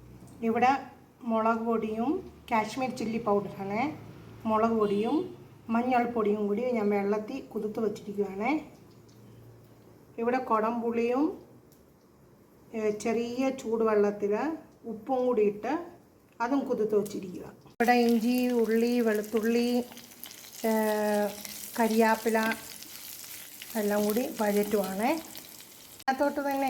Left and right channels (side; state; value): both; identical; correlation 1.00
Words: ഇവിടെ മുളക് പൊടിയും കാശ്മീർ ചില്ലി പൗഡറാണ്, മുളക് പൊടിയും മഞ്ഞൾപ്പൊടിയും കൂടി ഞാൻ വെള്ളത്തിൽ കുതിർത്ത് വച്ചിരിക്കുകയാണ്. ഇവിടെ കുടംപുളിയും ചെറിയ ചൂടുവെള്ളത്തിൽ ഉപ്പും കൂടി ഇട്ട് അതും കുതിർത്ത് വച്ചിരിക്കുക. ഇവിടെ ഇഞ്ചി, ഉള്ളി, വെളുത്തുള്ളി, കരിയാപ്പില എല്ലാം കൂടി വഴറ്റുവാണ്. അതിനകത്തോട്ട് തന്നെ